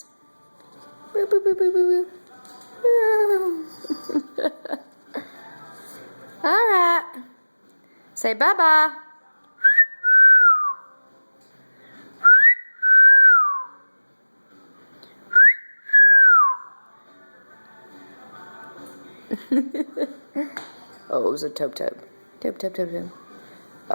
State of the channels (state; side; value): inverted; both; correlation -1.00